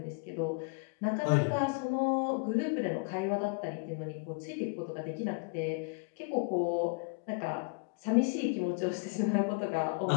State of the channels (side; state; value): right; quieter; 31.6 dB